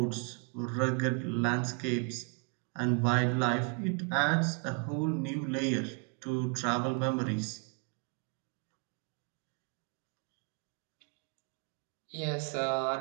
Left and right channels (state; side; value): quieter; left; 36.8 dB